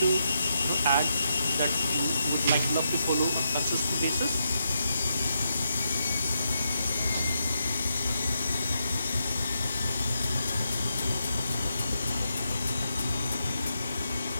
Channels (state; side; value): inverted; both; correlation -0.83